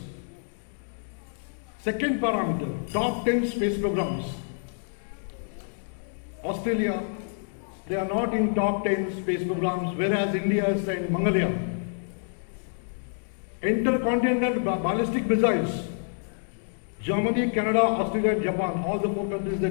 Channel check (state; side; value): silent; right; digital silence